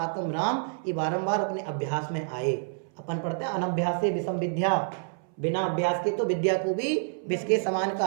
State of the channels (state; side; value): silent; left; 59 dB below the other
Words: राम, ये बारंबार अपने अभ्यास में आए। अपन पढ़ते हैं अनभ्यास से विषम विद्या, बिना अभ्यास के तो विद्या को भी विष के समान